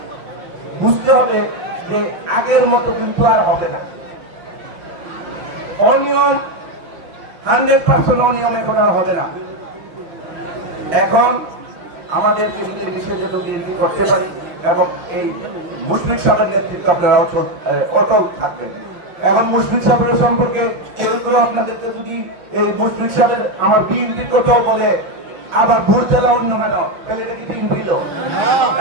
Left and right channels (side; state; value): left; late; 6.2 ms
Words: বুঝতে হবে যে আগের মতো কিন্তু আর হবে না। অনিয়ম 100% অনিয়ম এখন আর হবে না। এখন আমাদেরকে বিশেষ বিএনপি করতে পারি এবং এই মুশফিক সাহেবের নেতৃত্ব আপনারা অটল থাকবেন। এখন মুশফিক সাহেবের সম্পর্কে কেউ আপনাদেরকে যদি এই মুশফিক সাহেবের আমার বিএনপির কথাও বলে আবার ভোট দেওয়া অন্য কেন, তাহলে এটা কি বিএনপি লোক?